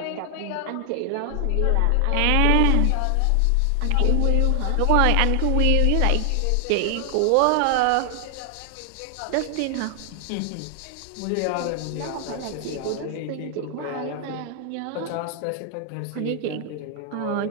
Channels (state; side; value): different; both; correlation 0.00